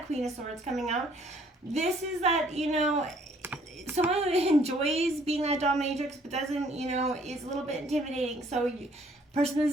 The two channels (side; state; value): both; normal; correlation 0.62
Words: Queen of Swords coming out. This is that, someone who enjoys being that dominatrix but doesn't, is a little bit intimidating. So person